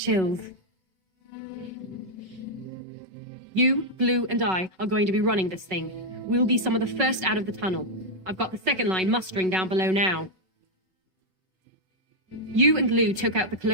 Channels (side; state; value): left; late; 5.4 ms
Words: You, Blue, and I are going to be running this thing. We'll be some of the first out of the tunnel. I've got the second line mustering down below now. You and Lou took out the